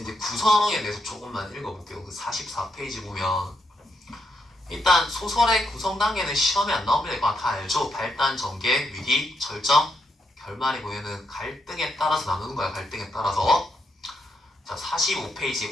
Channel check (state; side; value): normal; both; correlation 0.80